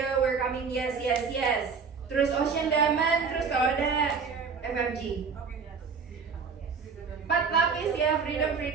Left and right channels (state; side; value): quieter; left; 5.5 dB